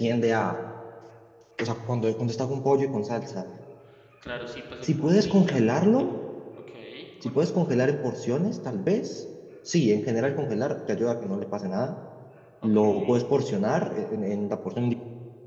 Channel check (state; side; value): identical; both; correlation 1.00